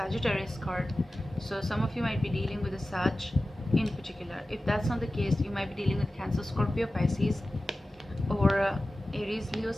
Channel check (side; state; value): both; normal; correlation 0.95